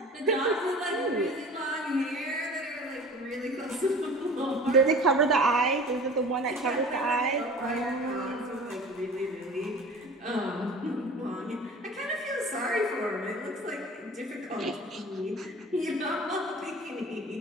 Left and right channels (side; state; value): both; normal; correlation 0.42